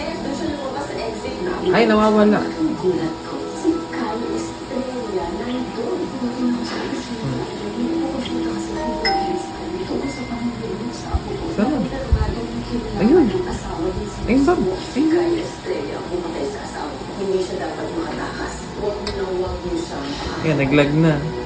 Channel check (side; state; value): both; identical; correlation 1.00